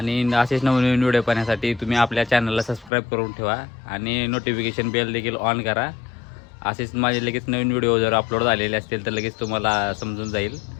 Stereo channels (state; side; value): drops out; right; at 2.9 s